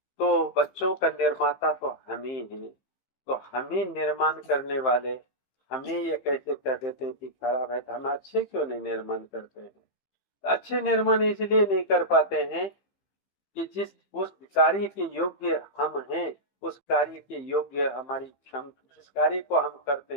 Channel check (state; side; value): late; right; 15 ms